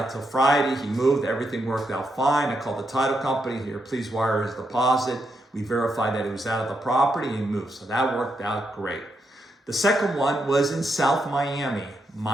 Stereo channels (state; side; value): normal; both; correlation 0.82